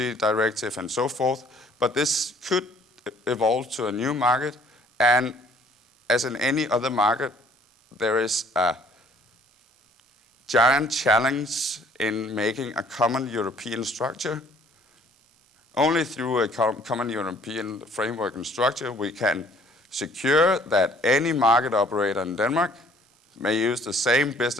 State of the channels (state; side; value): normal; both; correlation 0.58